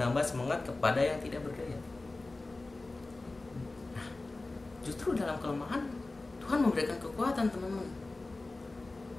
semangat kepada yang tidak berdaya. Nah, justru dalam kelemahan Tuhan memberikan kekuatan, teman-teman.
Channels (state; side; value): quieter; right; 3.2 dB